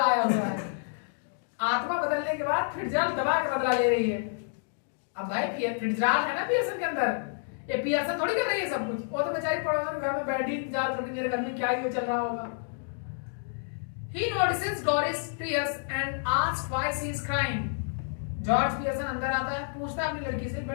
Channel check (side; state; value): right; silent; digital silence